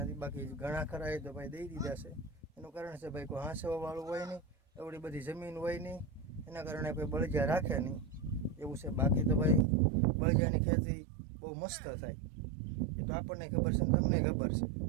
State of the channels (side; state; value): left; drops out; at 9.7 s